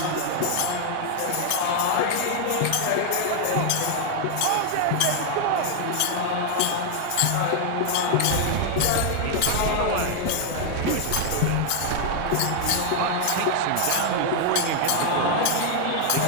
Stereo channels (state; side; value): different; both; correlation 0.00